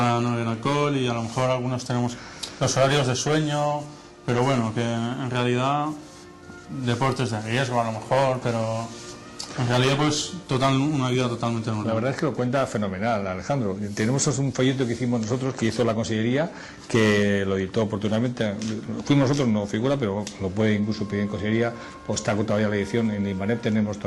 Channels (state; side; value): identical; both; correlation 1.00